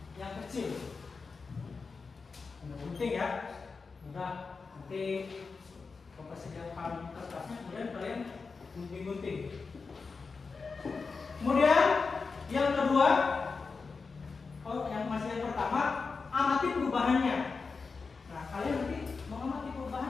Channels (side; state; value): right; quieter; 4.6 dB